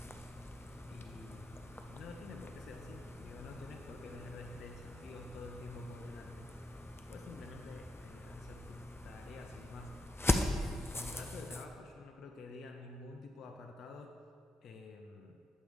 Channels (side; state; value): both; normal; correlation 0.84